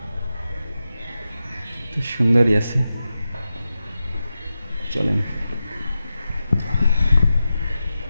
তো সুন্দরই আছে, চলেন।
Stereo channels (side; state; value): both; inverted; correlation -0.91